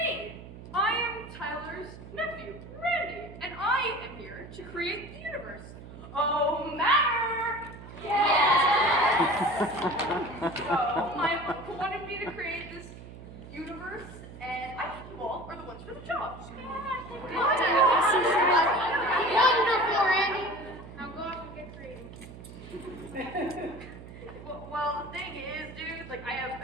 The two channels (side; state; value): right; noise; hum, 15 dB below the sound